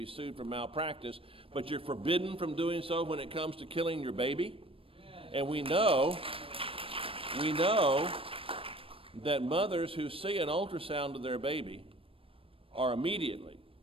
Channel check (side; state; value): left; late; 0.27 ms